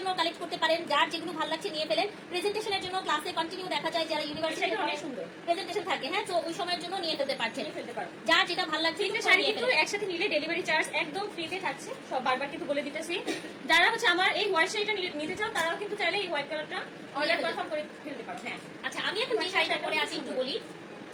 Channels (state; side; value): identical; both; correlation 1.00